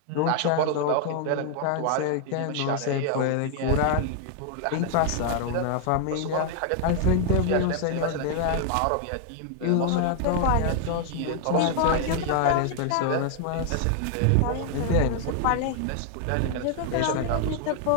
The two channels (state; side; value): different; both; correlation 0.00